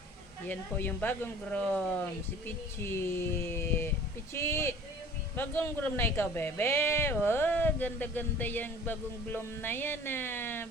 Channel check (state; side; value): normal; both; correlation 0.47